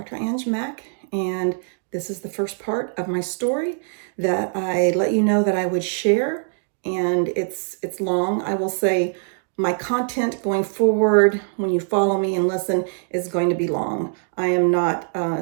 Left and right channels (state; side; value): silent; left; 61 dB below the other